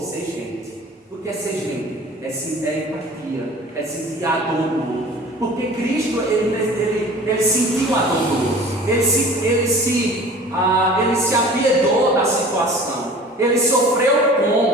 ser gente. O que é ser gente? É empatia, é sentir a dor do outro. Porque Cristo, ele sentiu a dor do outro, ele se apiedou da situação, ele sofreu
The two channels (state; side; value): normal; both; correlation 0.43